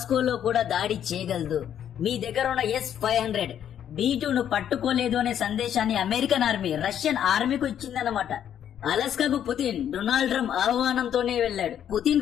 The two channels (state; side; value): quieter; right; 9.8 dB